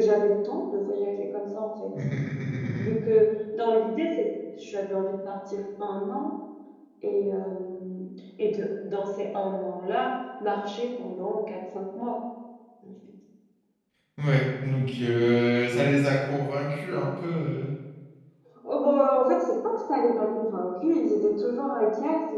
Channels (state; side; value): identical; both; correlation 1.00